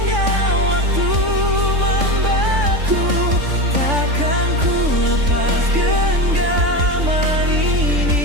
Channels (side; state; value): left; late; 3.5 ms